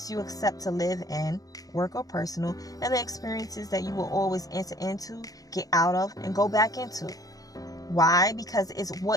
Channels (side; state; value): right; late; 0.17 ms